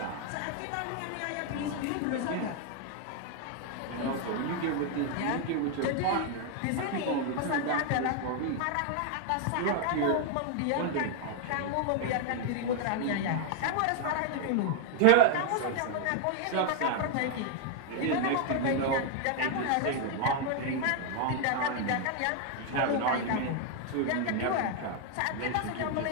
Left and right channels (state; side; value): different; both; correlation 0.00